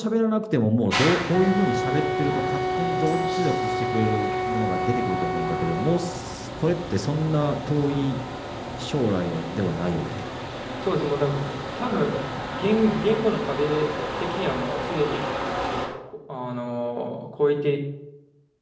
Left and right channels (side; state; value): both; identical; correlation 1.00